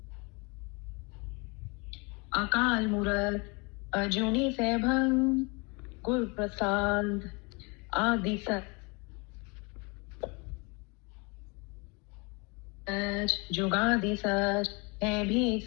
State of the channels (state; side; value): quieter; right; 29.6 dB